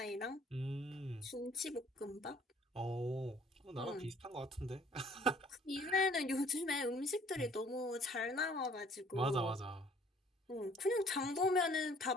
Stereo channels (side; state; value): both; normal; correlation 0.56